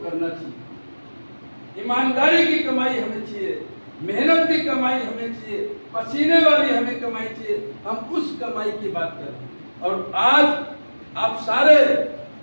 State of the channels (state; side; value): inverted; both; correlation -1.00